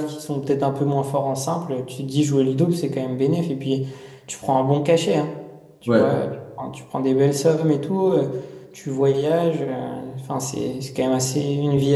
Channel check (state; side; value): identical; both; correlation 1.00